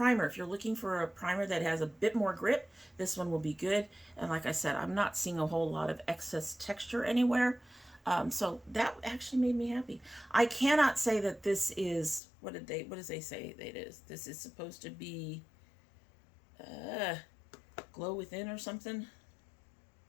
If you're looking for a primer that has a bit more grip, this one will be good. And like I said, I'm not seeing a whole lot of excess texture anywhere. So that actually made me happy. I cannot say that this is, what does they say it is? This is supposed to be glow within or something.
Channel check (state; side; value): drops out; right; at 12.2 s